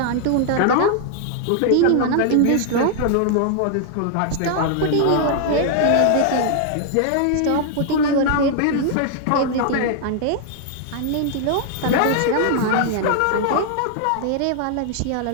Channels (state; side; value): different; both; correlation 0.00